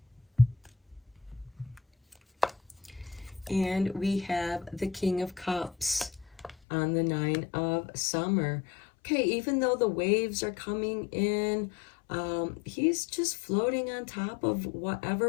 And we have the King of Cups on the Nine of Summer. Okay, even though the waves are coming in, he's just floating on top of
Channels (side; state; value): right; drops out; at 6.6 s